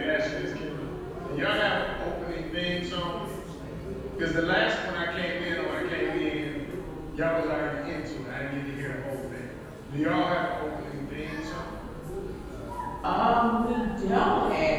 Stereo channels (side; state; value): both; identical; correlation 1.00